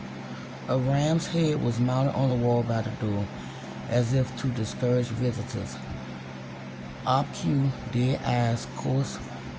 A ram's head was mounted on the wall by the door, as if to discourage visitors. Obtuse, dead eyes, coarse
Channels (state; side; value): identical; both; correlation 1.00